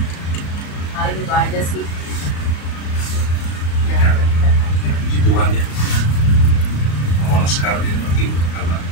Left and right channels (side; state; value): right; late; 35 ms